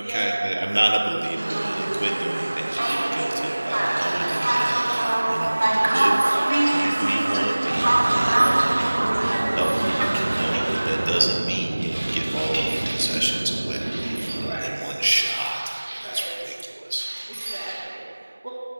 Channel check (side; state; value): both; inverted; correlation -1.00